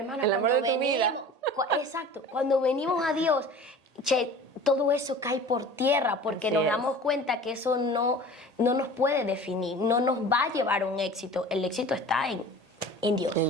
el amor de tu vida. Exacto, cuando venimos a Dios, todo eso cae por tierra porque Así nos es. damos cuenta que eso no nos puede definir, no nos va a llevar a un éxito. El éxito está en Dios.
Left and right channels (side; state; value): left; late; 1.8 ms